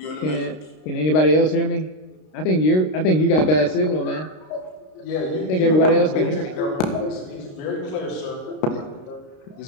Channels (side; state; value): right; late; 32 ms